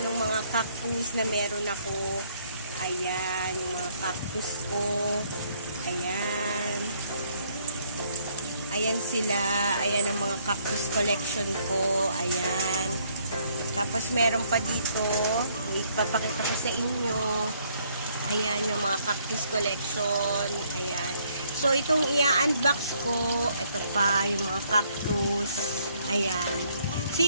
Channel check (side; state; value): both; inverted; correlation -0.67